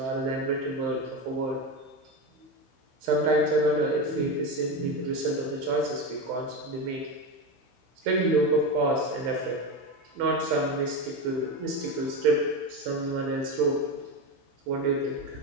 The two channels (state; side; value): late; left; 15 ms